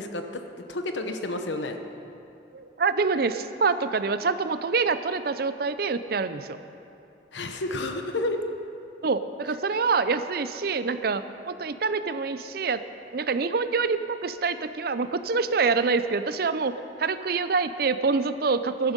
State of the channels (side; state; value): left; quieter; 3.7 dB